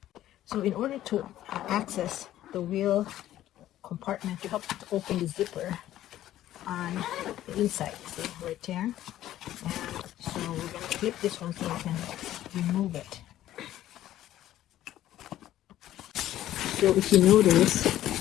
So in order to access the wheel compartment, you have to open the zipper on the inside, see, right there. And so we're going to clip this one so you can remove it. So if you notice,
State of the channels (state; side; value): quieter; right; 13.2 dB